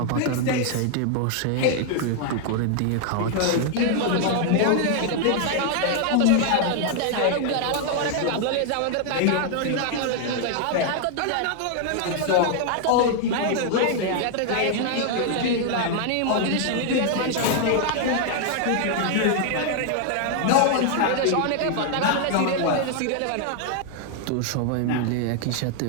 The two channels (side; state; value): both; different; correlation 0.00